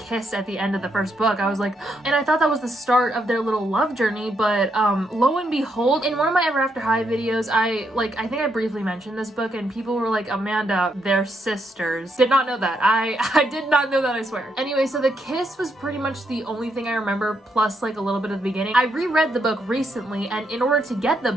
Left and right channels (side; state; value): both; normal; correlation 0.78